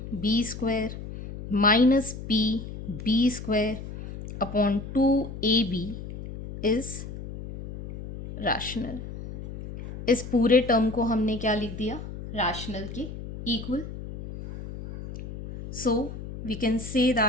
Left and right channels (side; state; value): left; noise; hum, 10 dB below the sound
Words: B square minus P B square upon 2AB is rational. इस पूरे term को हमने क्या लिख दिया? रैशनल के equal. So we can say